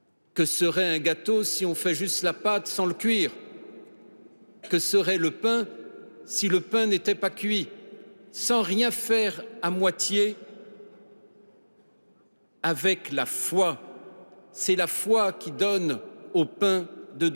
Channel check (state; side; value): inverted; both; correlation -1.00